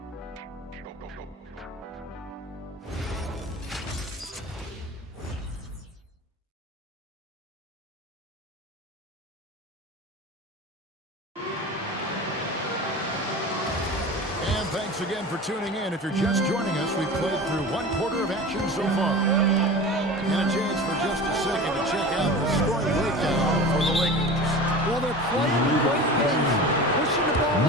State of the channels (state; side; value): normal; both; correlation 0.33